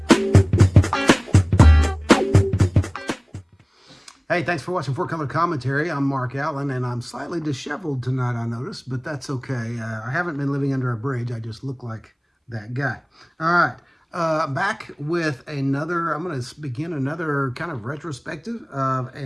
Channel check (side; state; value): both; identical; correlation 1.00